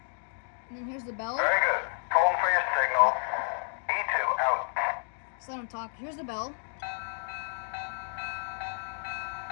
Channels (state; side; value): silent; right; digital silence